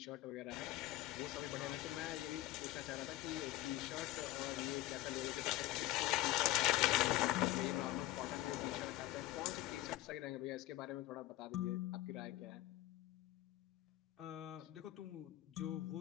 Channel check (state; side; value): quieter; right; 16.1 dB